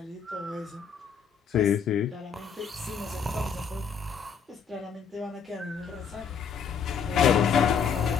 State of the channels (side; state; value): right; quieter; 6.7 dB